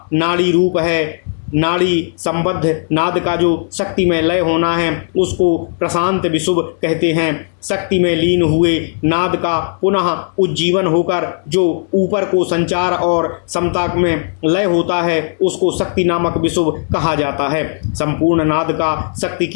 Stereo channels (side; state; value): right; silent; digital silence